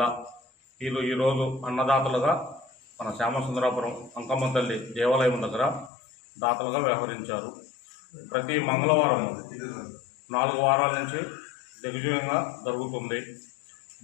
వీళ్ళు ఈరోజు అన్నదాతలుగా మన శ్యామసుందరపురం అంకమ్మ తల్లి దేవాలయం దగ్గర దాతలుగా వ్యవహరించారు. ప్రతి మంగళవారం 4 వారాల నుంచి దిగ్విజయంగా జరుగుతుంది.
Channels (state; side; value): drops out; right; at 5.9 s